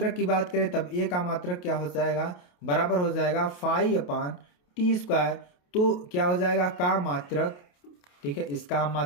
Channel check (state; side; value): late; right; 28 ms